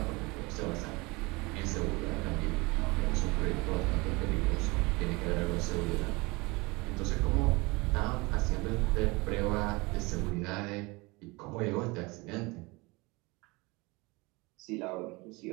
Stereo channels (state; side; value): quieter; left; 25.0 dB